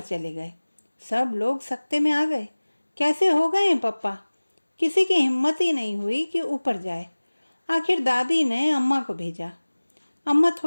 चले गए। सब लोग सकते में आ गए। कैसे हो गए पप्पा? किसी की हिम्मत ही नहीं हुई कि ऊपर जाए। आखिर दादी ने अम्मा को भेजा। अम्मा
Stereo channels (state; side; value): inverted; both; correlation -1.00